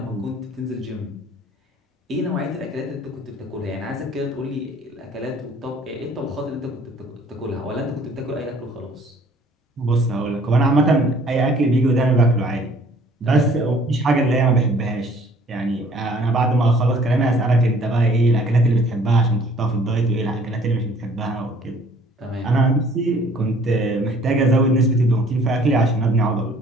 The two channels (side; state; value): both; normal; correlation 0.56